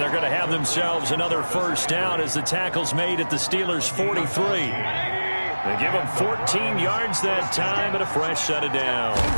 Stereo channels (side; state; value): both; inverted; correlation -1.00